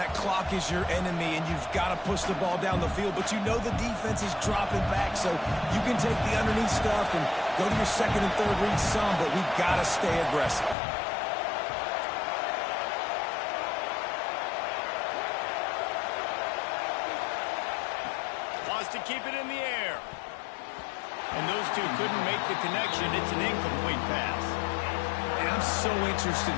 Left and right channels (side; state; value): right; drops out; at 10.8 s